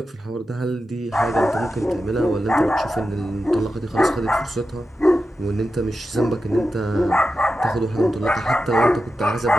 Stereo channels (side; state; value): both; normal; correlation 0.91